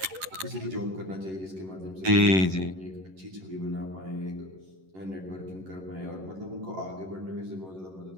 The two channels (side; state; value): left; late; 11 ms